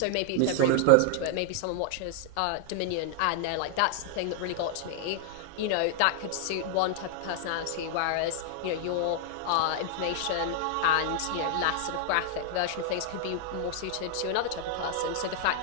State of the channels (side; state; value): both; different; correlation -0.01